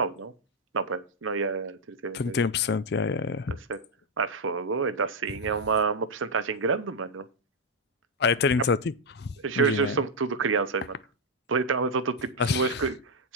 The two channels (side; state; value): both; normal; correlation 0.00